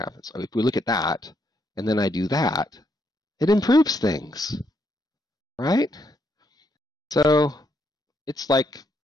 If we look at that, and then I do that, it improves things, right? So it's like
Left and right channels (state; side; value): normal; both; correlation 0.76